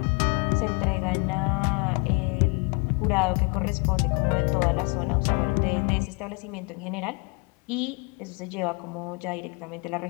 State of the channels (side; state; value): right; quieter; 32.2 dB